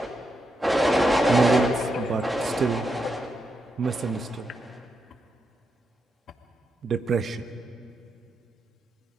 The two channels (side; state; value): both; normal; correlation 0.84